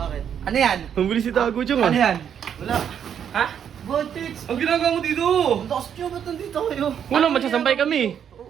Ano yan? Ang bilis si Tago Chong ah! Ano yan? Wala. Ha? Bakit? Ang ginagawa mo dito? Ang lakas niyo, ba't nandito kayo? Wala, magsasampay kami!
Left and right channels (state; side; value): quieter; left; 8.6 dB